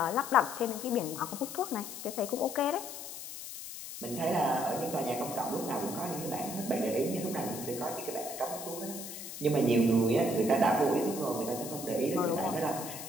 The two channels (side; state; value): left; noise; hiss, 10 dB below the sound